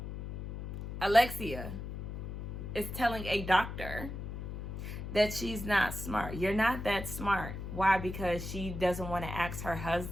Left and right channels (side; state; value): left; noise; hum, 7 dB below the sound